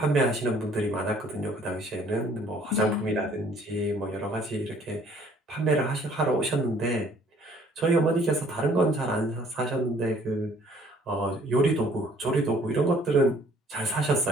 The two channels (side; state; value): both; normal; correlation 0.58